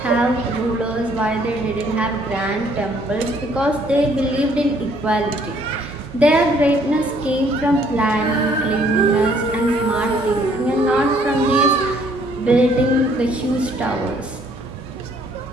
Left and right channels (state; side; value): normal; both; correlation 0.63